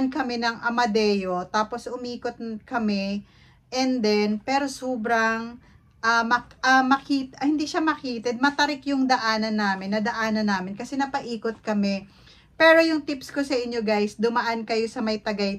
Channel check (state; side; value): identical; both; correlation 1.00